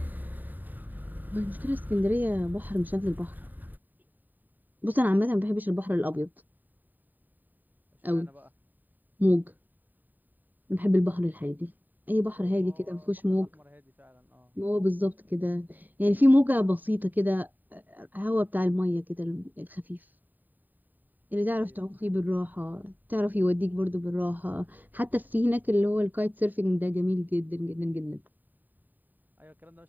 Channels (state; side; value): late; left; 0.088 ms